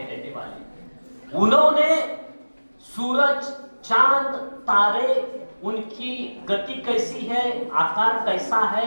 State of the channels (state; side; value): inverted; both; correlation -1.00